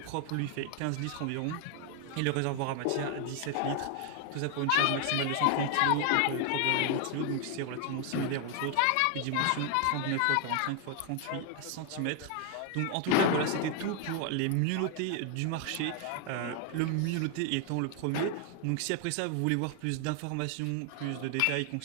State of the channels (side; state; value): both; different; correlation 0.00